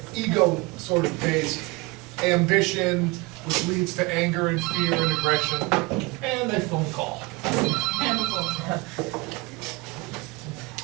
ego sort of based ambition, which leads to anger and fear and aggression, and a phone call. And the phone.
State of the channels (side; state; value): left; quieter; 25.3 dB